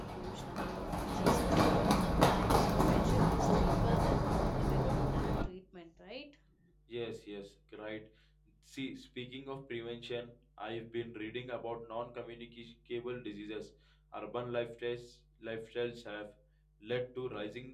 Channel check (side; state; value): both; identical; correlation 1.00